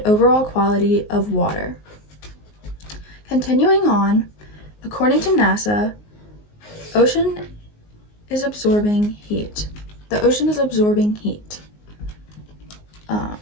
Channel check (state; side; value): late; right; 19 ms